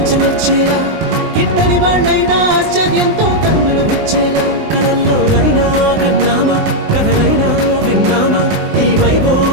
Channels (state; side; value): late; left; 20 ms